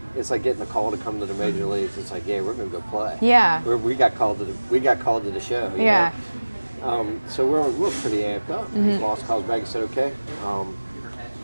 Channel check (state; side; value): inverted; both; correlation -1.00